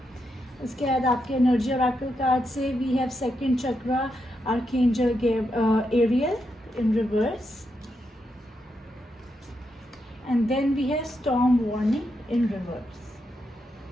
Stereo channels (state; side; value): normal; both; correlation 0.83